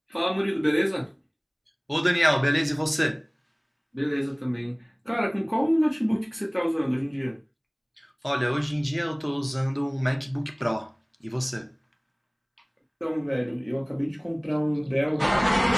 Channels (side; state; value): both; identical; correlation 1.00